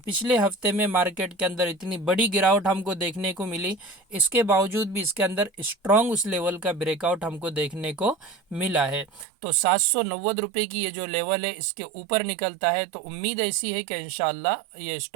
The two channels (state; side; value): drops out; left; at 9.2 s